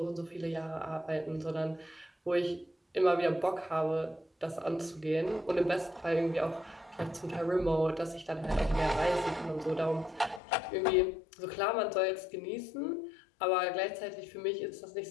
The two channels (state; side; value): drops out; right; at 10.4 s